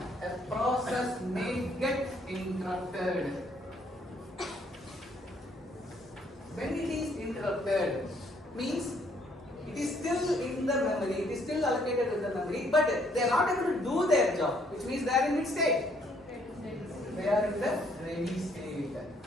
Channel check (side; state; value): both; normal; correlation 0.66